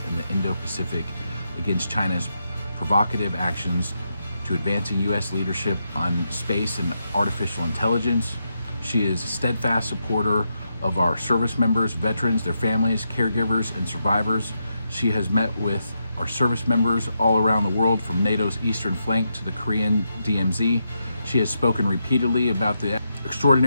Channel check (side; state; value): both; inverted; correlation -0.83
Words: in the Indo-Pacific against China's provocative actions, to advancing U.S. leadership on space and artificial intelligence. She is a steadfast supporter of our service members, veterans, their families, caregivers, and survivors. She has met with our service members all around the world, from NATO's eastern flank to the Korean DMZ. She has spoken repeatedly about the